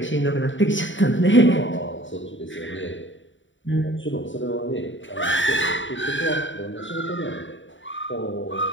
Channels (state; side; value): late; right; 0.55 ms